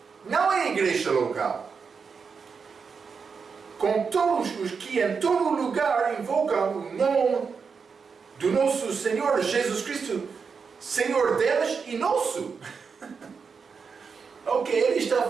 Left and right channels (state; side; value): quieter; left; 5.6 dB